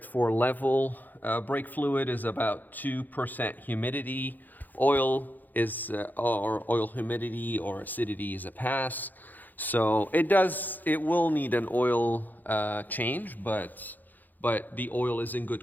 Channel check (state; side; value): late; right; 0.085 ms